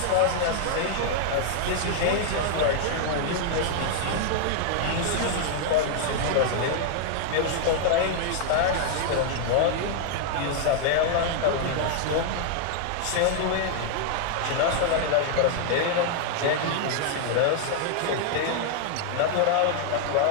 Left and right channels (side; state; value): both; different; correlation 0.00